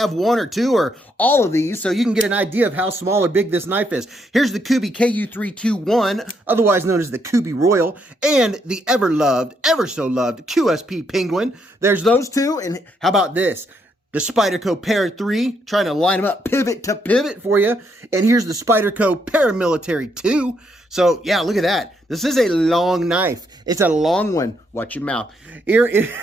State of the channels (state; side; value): normal; both; correlation 0.75